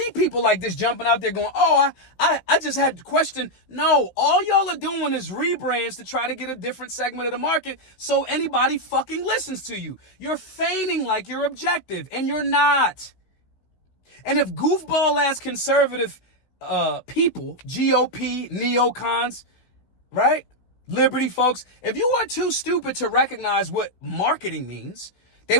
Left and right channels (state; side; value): late; right; 16 ms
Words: people like this jumping out there going, oh, I just had to question. No, all y'all are doing is rebrands to try to get a different segment of the market so anybody fucking listens to you. You're feigning like you're objective and you're not. And if goofball-ass conservative people, GOP, neocons, right, liberty folks, if you are too stupid to recognize what marketing means, They